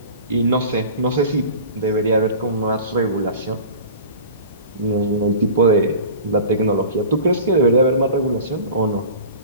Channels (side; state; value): both; inverted; correlation -0.39